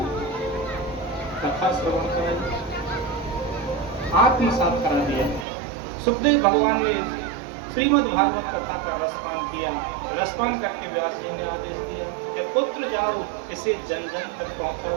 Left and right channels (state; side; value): drops out; left; at 5.5 s